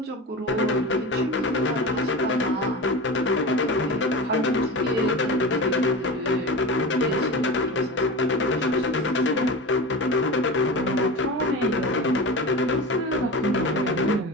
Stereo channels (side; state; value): both; normal; correlation 0.27